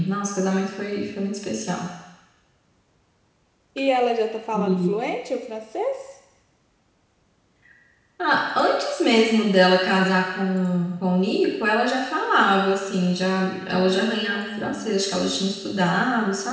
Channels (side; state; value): both; identical; correlation 1.00